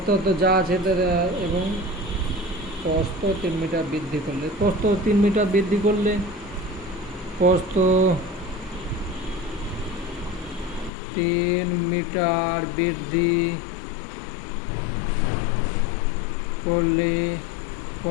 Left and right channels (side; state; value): right; drops out; at 10.9 s